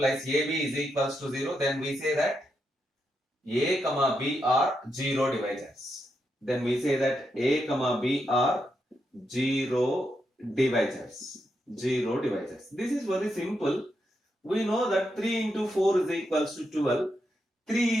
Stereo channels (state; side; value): normal; both; correlation 0.83